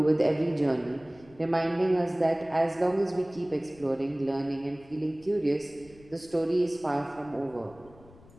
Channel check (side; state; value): left; noise; rumble, 24 dB below the sound